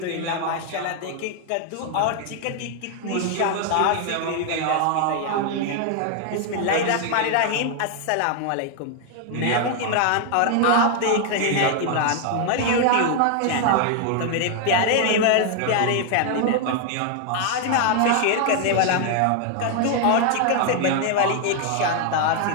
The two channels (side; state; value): both; different; correlation 0.00